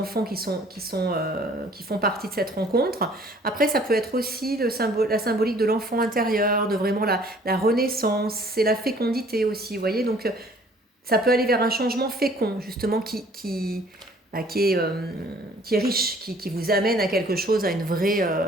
qui font partie de cette rencontre. Après, ça peut être aussi la symbolique de l'enfant intérieur, de vraiment la renaissance, c'est la fécondité aussi, vous voyez. Donc, ça peut aller vers un changement fécond, justement, qui est riche, qui vous amène à quelque chose, à une vraie,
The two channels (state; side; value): normal; both; correlation 0.56